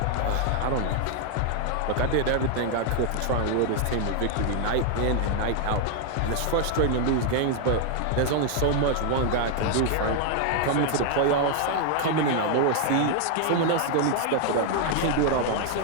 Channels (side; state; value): both; different; correlation 0.00